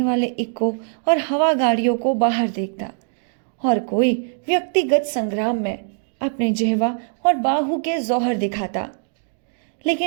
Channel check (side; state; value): left; silent; digital silence